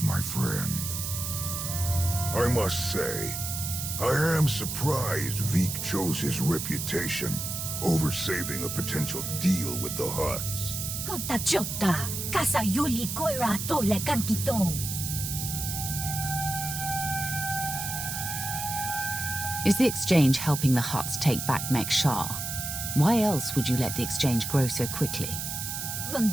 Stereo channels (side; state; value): right; noise; hiss, 4 dB below the sound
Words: my friend. I must say, I am surprised Veek chose his reputation over saving a potential deal with the Hutts. Kota chota, kasa yuli koira toile kankitong. Is the exchange helping the Hutts take back Mek-Sha? Why else would you let the exchange grow so quickly? In